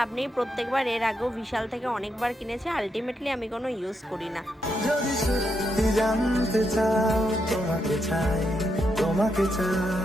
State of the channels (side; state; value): both; normal; correlation 0.81